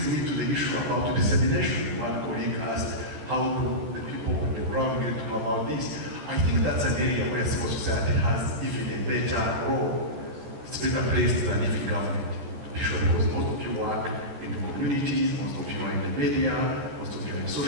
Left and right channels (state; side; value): late; left; 13 ms